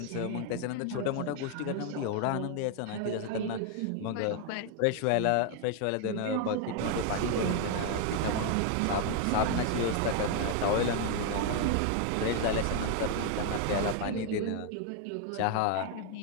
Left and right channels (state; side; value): different; both; correlation 0.00